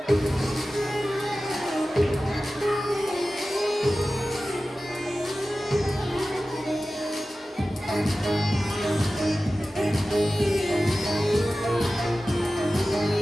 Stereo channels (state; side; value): normal; both; correlation 0.95